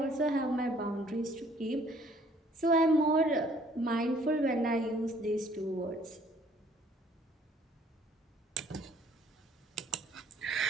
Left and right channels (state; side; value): normal; both; correlation 0.60